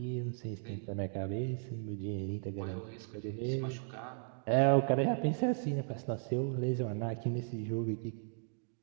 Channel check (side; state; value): left; silent; digital silence